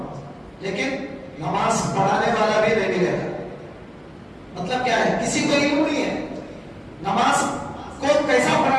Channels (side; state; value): both; identical; correlation 1.00